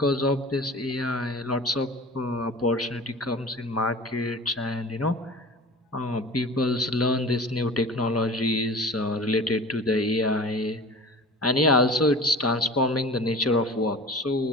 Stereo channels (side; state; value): both; normal; correlation 0.38